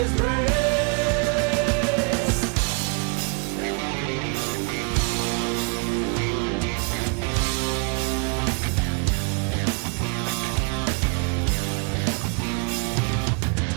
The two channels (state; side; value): quieter; left; 36.1 dB